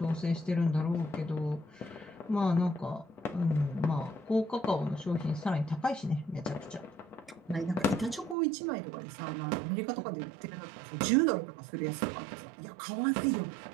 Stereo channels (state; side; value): drops out; left; at 8.3 s